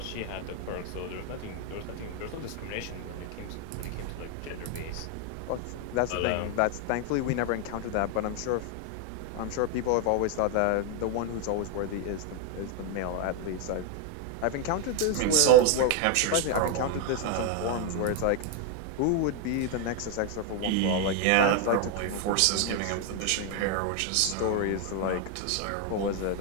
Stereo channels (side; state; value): both; different; correlation 0.01